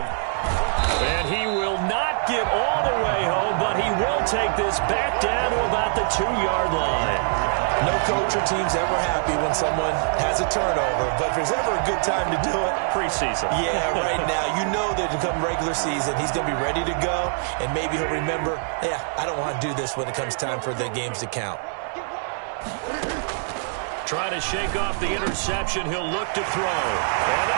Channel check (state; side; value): silent; left; digital silence